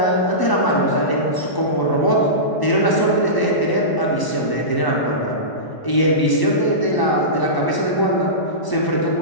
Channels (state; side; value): late; right; 1.0 ms